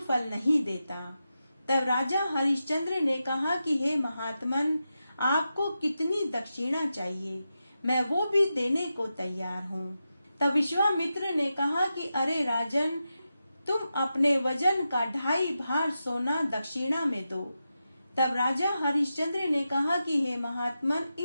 फल नहीं देता। तब राजा हरिश्चंद्र ने कहा कि हे महात्मन, आपको कितनी दक्षिणा चाहिए, मैं वो भी देने को तैयार हूँ। तब विश्वामित्र ने कहा कि अरे राजन, तुम अपने वजन का 2.5 भार सोना दक्षिणा में दो। तब राजा हरिश्चंद्र ने कहा कि हे महात्मन,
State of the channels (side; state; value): both; inverted; correlation -0.90